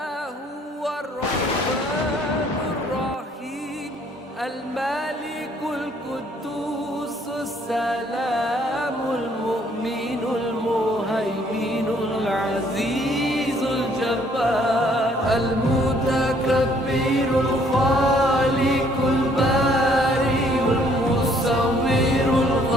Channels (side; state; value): both; normal; correlation 0.63